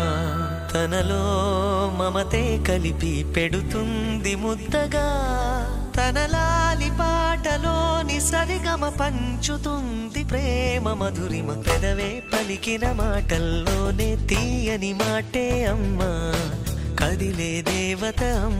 తనలో మమతే కలిపి పెడుతుంది ముద్దగా, తన లాలి పాటలోని సరిగమ పంచుతుంది ప్రేమ మధురిమ. పెదవే పలికిన మాటల్లోనే తీయని మాటే అమ్మా, కదిలే దేవత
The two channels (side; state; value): both; identical; correlation 1.00